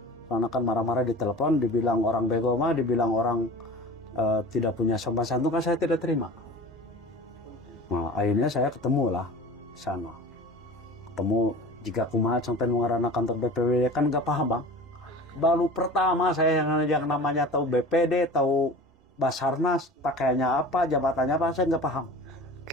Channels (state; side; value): normal; both; correlation 0.38